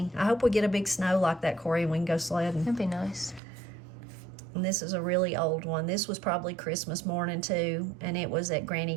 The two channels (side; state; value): left; drops out; at 3.4 s